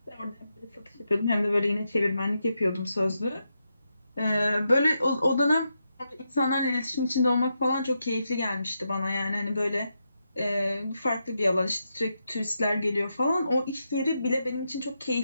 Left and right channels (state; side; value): inverted; both; correlation -0.85